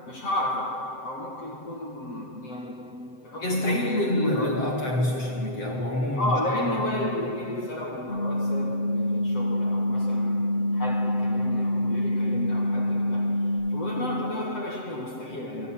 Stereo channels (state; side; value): late; right; 7.8 ms